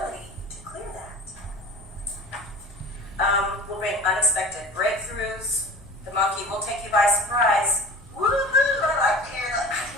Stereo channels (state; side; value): normal; both; correlation 0.37